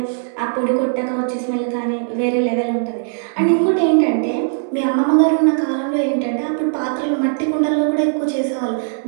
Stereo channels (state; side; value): silent; left; 65 dB below the other